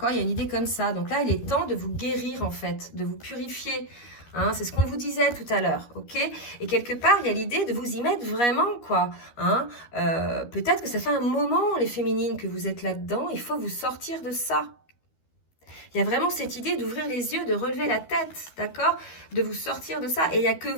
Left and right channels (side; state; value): right; late; 13 ms